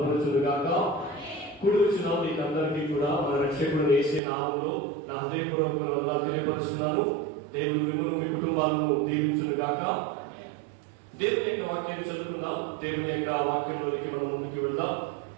కూడి వచ్చిన మీకు అందరికీ కూడా మన రక్షకుడు యేసే నామములో నా హృదయపూర్వకమైన వందనాలు తెలియపరుస్తున్నాను. దేవుడు మిమ్మల్ని మీ కుటుంబాలను దీవించుగాక. దేవుని యొక్క వాక్యాన్ని చదువుకుందాం. దేవుని యొక్క వాక్యంలోనికి మనం ముందుకు వెళ్దాం.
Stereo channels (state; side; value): drops out; left; at 4.2 s